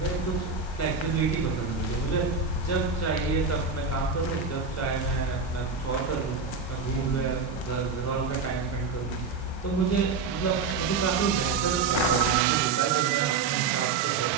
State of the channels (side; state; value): left; quieter; 4.8 dB